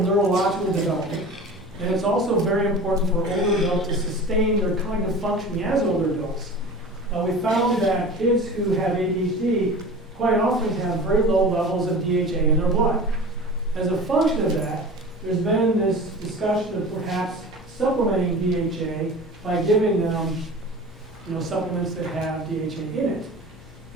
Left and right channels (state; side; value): normal; both; correlation 0.37